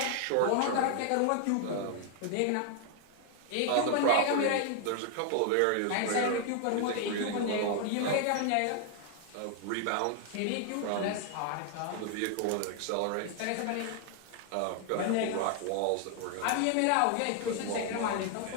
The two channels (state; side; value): different; both; correlation 0.00